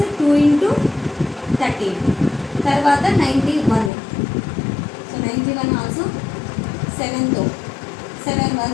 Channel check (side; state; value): right; drops out; at 3.9 s